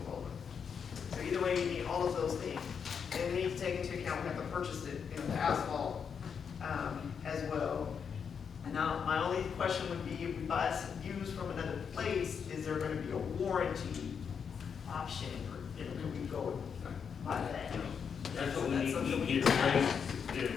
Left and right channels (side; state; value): right; quieter; 6.8 dB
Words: roller. So either way, you need all of those things. And we need to take into account, we have to purchase it, you know, the asphalt as well. Now, my only question would be, if we buy some used from another place, is there gonna be a warranty option, or, you know, can we go buy that? That's what we need to get ready